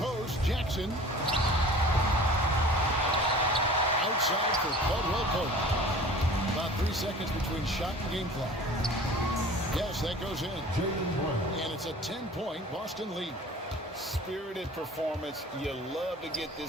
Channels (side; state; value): both; normal; correlation 0.44